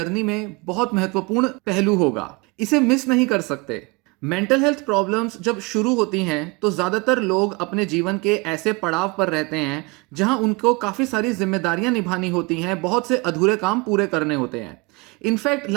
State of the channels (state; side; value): quieter; left; 27.6 dB